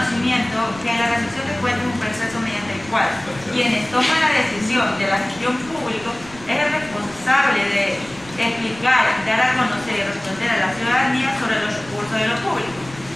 que la rendición de cuentas es un proceso mediante el cual quienes toman la decisión de la gestión pública es el responsable de explicar, dar a conocer y responder a la ciudadanía sobre los recursos de lo público.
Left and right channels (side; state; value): right; noise; rumble, 19 dB below the sound